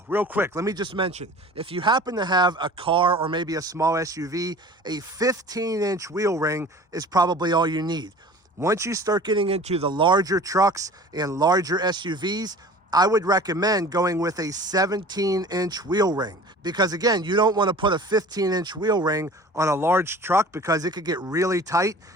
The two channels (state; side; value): normal; both; correlation 0.43